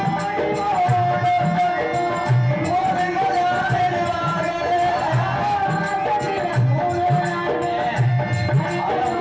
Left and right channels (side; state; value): both; identical; correlation 1.00